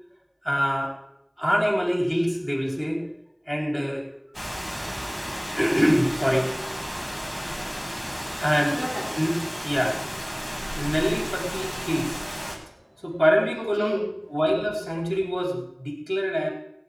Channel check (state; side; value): identical; both; correlation 1.00